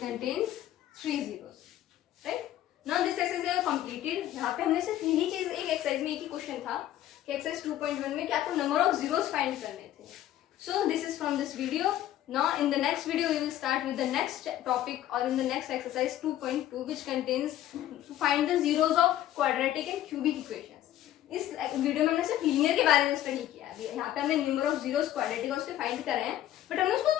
3 zeros, right? Now this exercise है completed. यहाँ पे हमने सिर्फ यही चीज एक exercise में एक ही क्वेश्चन था कि एक्सरसाइज 2.1 में कि आपको नंबर ऑफ जीरोस फाइंड करने थे. So this is from this video. Now in the next video we will start with the next topic or in the next exercise 2.2 which contains to find the zeros of quadratic and cubic equations. इस video में हमने सिर्फ linear के बारे में study किया है. यहाँ पे हमने नंबर ऑफ जीरोस क्वाड्रेटिक और उसके फाइंड करे हैं, बट हमने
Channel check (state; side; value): quieter; right; 12.8 dB